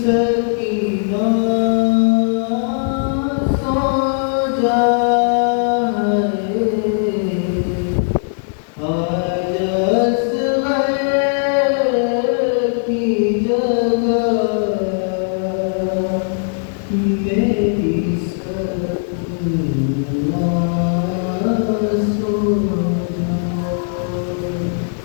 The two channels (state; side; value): silent; right; digital silence